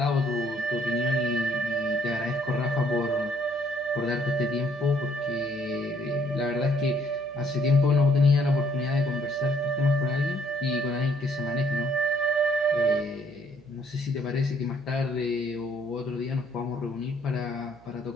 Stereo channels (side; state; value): right; noise; hum, 26 dB below the sound